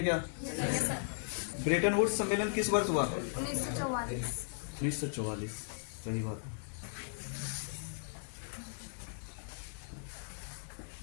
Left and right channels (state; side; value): silent; right; digital silence